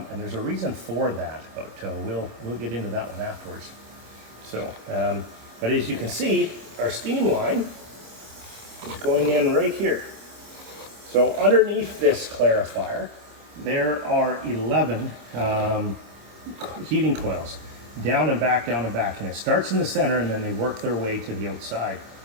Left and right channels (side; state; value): left; late; 26 ms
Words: there's a reason for that, but we'll get into that one afterwards. So but as you can see, our steam line is going in right here. So underneath this clarifier there are 11 heating coils, down and back, and it starts in the center and then they work their way to the outside.